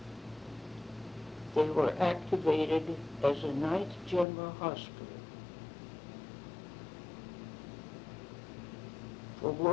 they were activated as a 9th General Hospital. For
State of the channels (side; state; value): right; drops out; at 4.2 s